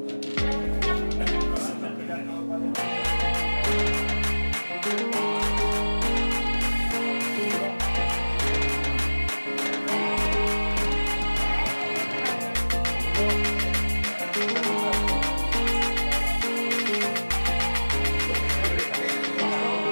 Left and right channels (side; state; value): both; inverted; correlation -1.00